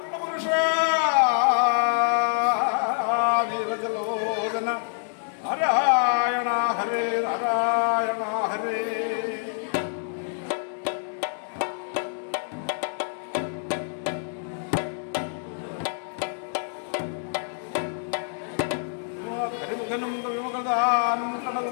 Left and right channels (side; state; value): right; silent; digital silence